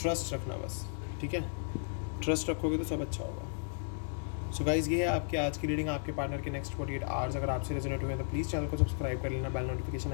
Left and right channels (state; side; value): silent; right; digital silence